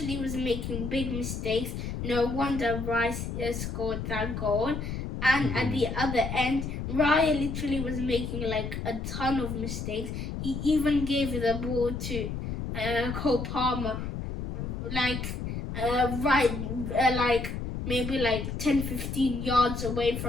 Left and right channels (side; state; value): left; noise; rumble, 5 dB below the sound